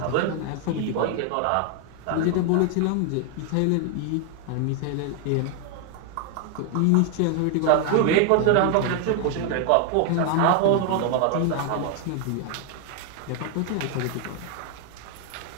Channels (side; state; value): both; different; correlation 0.00